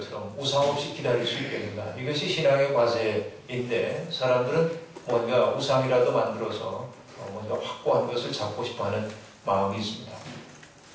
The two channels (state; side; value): identical; both; correlation 1.00